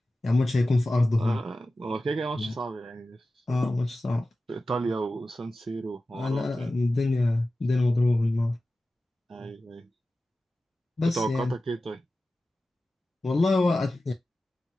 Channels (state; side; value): normal; both; correlation 0.94